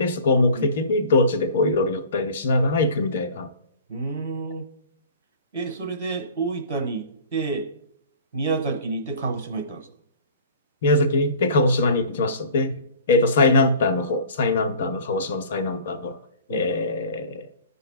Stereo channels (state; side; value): inverted; both; correlation -0.44